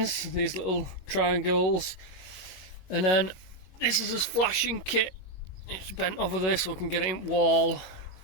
these little triangles, and then this is his flashing kit. It's bent over there so we can get it in wall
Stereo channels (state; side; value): late; right; 21 ms